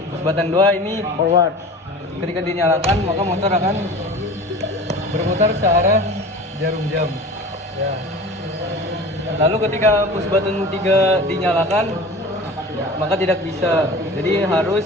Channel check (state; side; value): normal; both; correlation 0.38